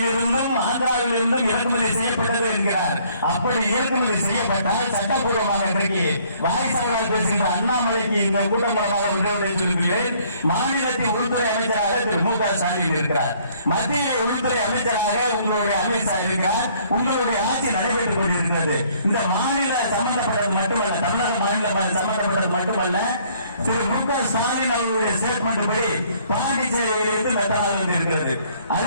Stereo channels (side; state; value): both; inverted; correlation -0.62